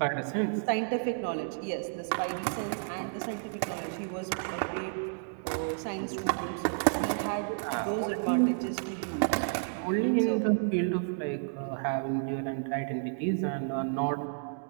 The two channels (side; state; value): left; silent; digital silence